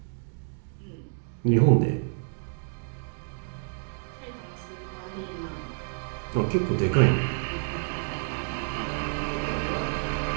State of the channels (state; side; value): silent; left; 59 dB below the other